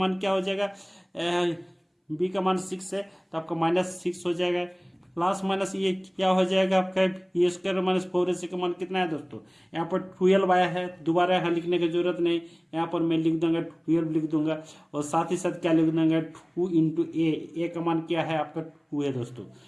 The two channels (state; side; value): identical; both; correlation 1.00